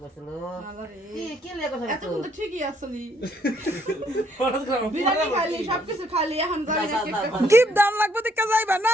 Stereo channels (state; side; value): normal; both; correlation 0.68